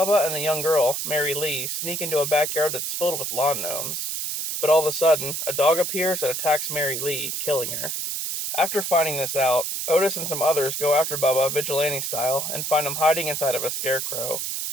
and the young girl, Mary Lee, sneak into a backyard that's filled with lawn gnomes. But all of a sudden, a dog appears and attacks Mary Lee, killing her. After finding this out, Otis and some others go after Bubba vigilante style and find him hiding inside of a scarecrow,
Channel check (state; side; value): noise; right; hiss, 3 dB below the sound